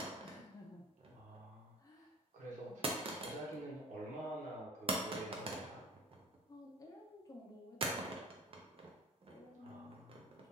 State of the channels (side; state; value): both; normal; correlation 0.39